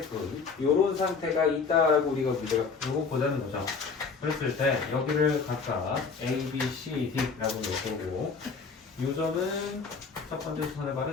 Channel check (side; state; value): right; quieter; 5.0 dB